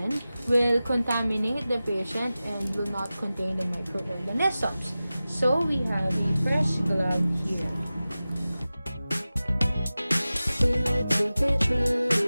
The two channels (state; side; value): inverted; both; correlation -0.95